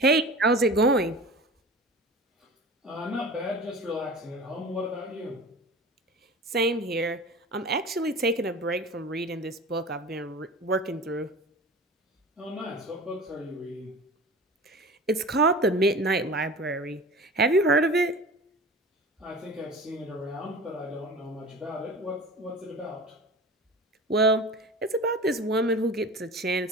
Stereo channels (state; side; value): normal; both; correlation 0.37